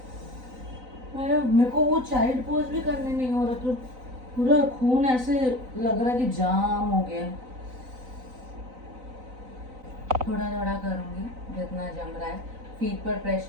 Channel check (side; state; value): left; late; 4.0 ms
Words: मेरे को वो चाइल्ड पोज भी करने नहीं हो रहा, तो पूरा खून ऐसे लग रहा है कि जाम हो गया. थोड़ा थोड़ा करूंगी जितना जम रहा है. फीट पर